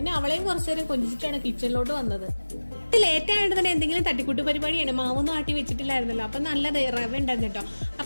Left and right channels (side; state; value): both; inverted; correlation -1.00